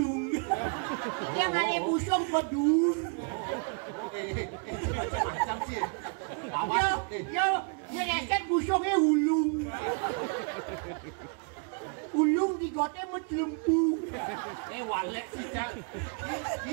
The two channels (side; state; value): left; quieter; 39.7 dB